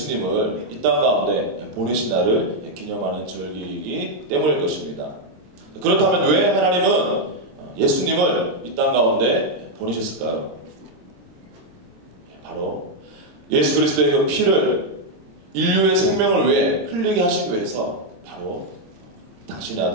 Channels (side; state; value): left; late; 26 ms